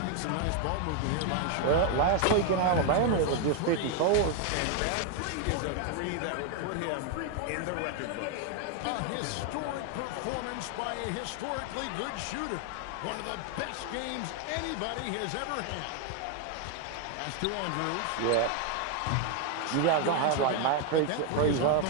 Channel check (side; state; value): both; different; correlation 0.01